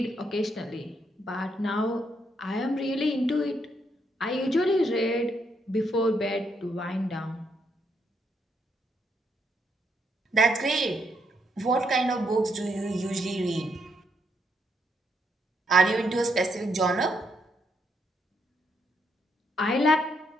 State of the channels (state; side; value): normal; both; correlation 0.76